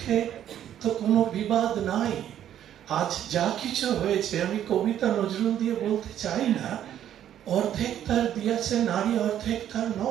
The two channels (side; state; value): left; quieter; 10.7 dB